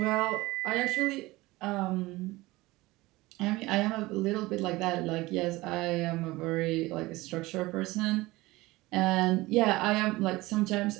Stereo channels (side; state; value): left; quieter; 20.1 dB